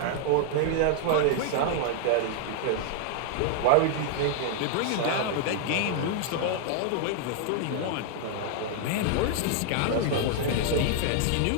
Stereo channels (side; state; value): both; different; correlation 0.00